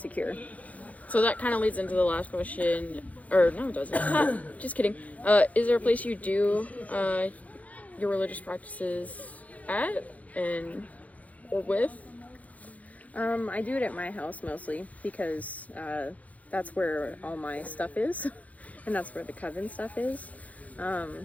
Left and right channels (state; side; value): late; right; 0.071 ms